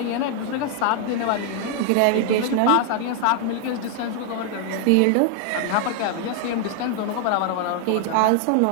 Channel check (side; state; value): both; different; correlation 0.00